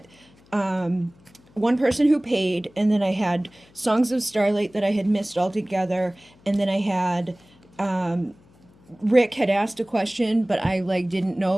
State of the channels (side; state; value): left; noise; hum, 29 dB below the sound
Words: one person who paid, and then I had Songs of Starlight that I had missed altogether, and then I had Rick had asked a question, but I like didn't